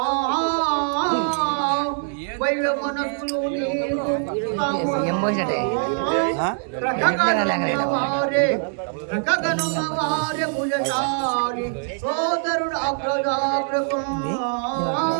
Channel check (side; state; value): left; silent; digital silence